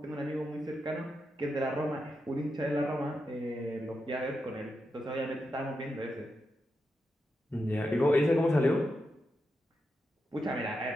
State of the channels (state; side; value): normal; both; correlation 0.86